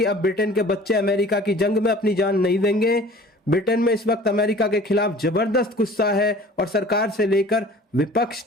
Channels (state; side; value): normal; both; correlation 0.46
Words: अब ब्रिटेन के बच्चे अमेरिका की जंग में अपनी जान नहीं देंगे। ब्रिटेन में इस वक्त अमेरिका के खिलाफ जबरदस्त गुस्सा है और सरकार से लेकर विपक्ष